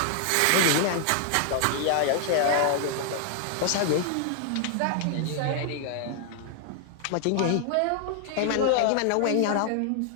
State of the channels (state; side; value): different; both; correlation 0.00